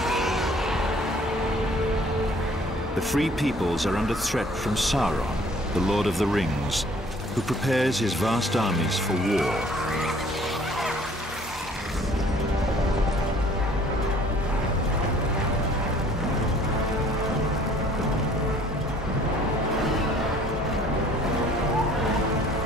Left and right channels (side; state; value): both; normal; correlation 0.56